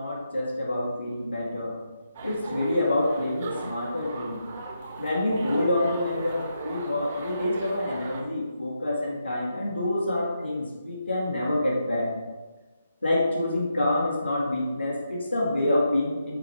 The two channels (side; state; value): both; inverted; correlation -0.83